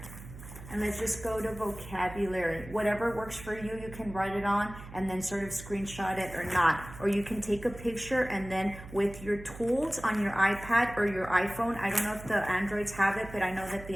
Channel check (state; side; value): noise; right; hum, 15 dB below the sound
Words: And let's just go to vocabulary. Whatever works for you, you can write it on and then sort of screenshot it or not. Or you can take a picture, and then with your tools on your iPad or your iPhone, I don't know if the Androids have it, but I know that the